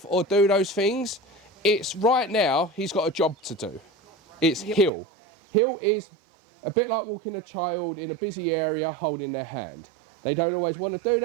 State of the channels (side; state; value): left; drops out; at 4.9 s